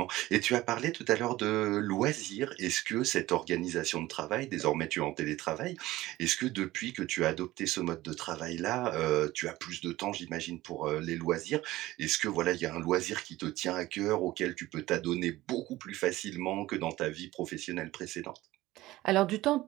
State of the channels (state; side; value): quieter; left; 17.2 dB